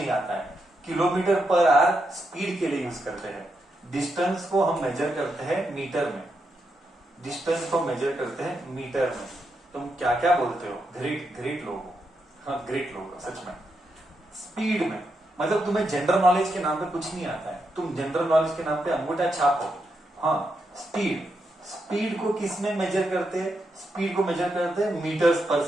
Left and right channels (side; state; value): both; normal; correlation 0.83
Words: आता है। किलोमीटर पर आवर स्पीड के लिए यूज करते हैं। डिस्टेंस को हम मेजर करते हैं मीटर में। तुम क्या क्या बोलते हो? ग्रेट लोग हो, हाँ ग्रेट लोग हो सच में। स्पीड में मतलब तुम्हें जनरल नॉलेज के नाम पे कुछ नहीं आता है, तुम जनरल नॉलेज के नाम पे अंगूठा छाप हो। हाँ, स्पीड को किस में मेजर करते हैं? स्पीड को मेजर करते हैं मीटर्स पर